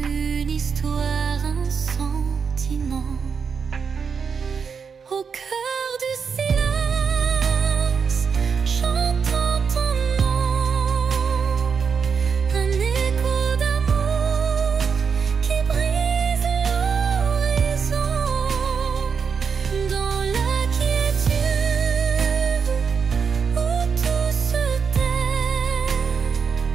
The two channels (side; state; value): left; quieter; 6.0 dB